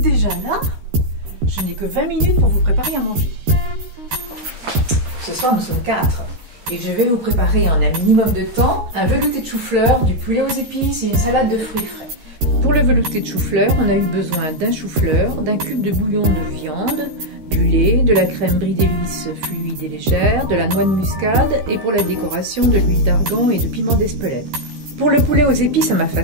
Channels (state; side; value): late; left; 13 ms